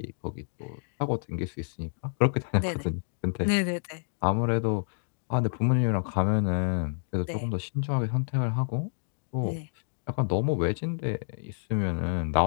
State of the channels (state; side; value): silent; right; digital silence